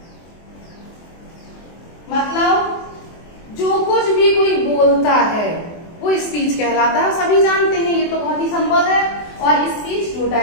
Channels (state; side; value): late; right; 24 ms